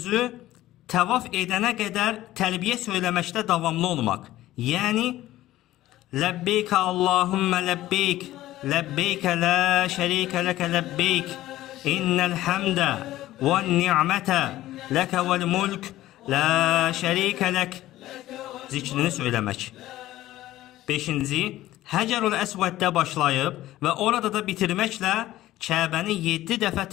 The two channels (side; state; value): right; quieter; 15.2 dB